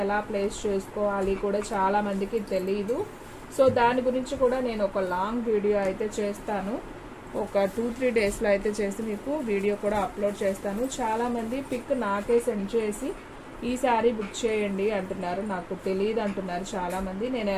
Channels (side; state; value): both; identical; correlation 1.00